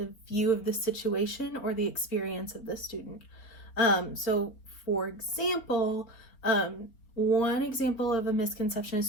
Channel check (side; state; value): right; late; 4.3 ms